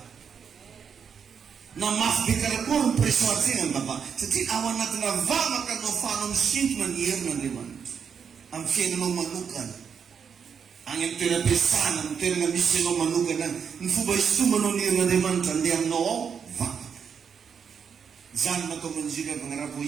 Na mafy be karakory ny pression atsena ny vavaka. Satria ao anatina vavaka no ahafahanao misintona ny herin'Andriamanitra amin'ny fiainanao manokana. Agny amin'ny toeram-piasana, amin'ny toerana misy anao manokana, ny fomba hisintomanao ny herin'Andriamanitra andeha aminao ao vavaka. Zany natao manjiry avy agnarabo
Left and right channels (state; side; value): quieter; left; 6.9 dB